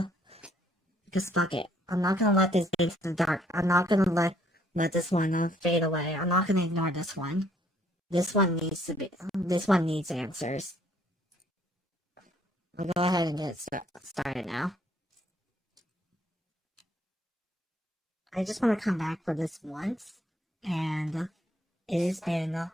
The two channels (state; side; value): normal; both; correlation 0.65